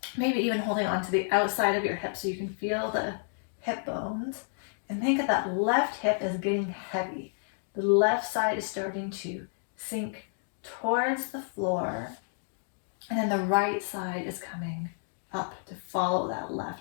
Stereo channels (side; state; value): right; silent; digital silence